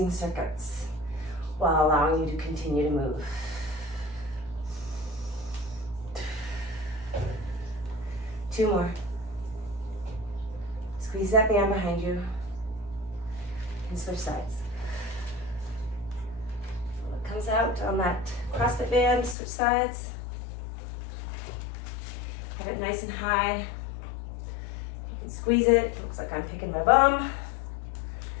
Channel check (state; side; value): drops out; right; at 19.4 s